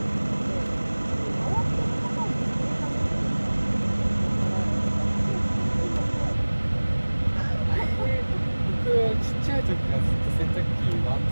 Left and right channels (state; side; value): inverted; both; correlation -1.00